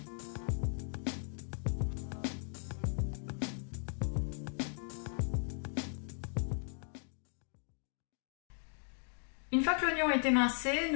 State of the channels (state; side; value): silent; right; 53 dB below the other